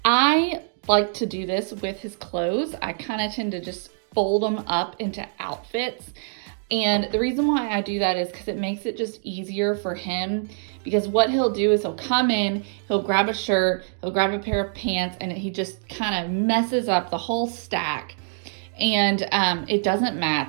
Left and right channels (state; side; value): silent; left; digital silence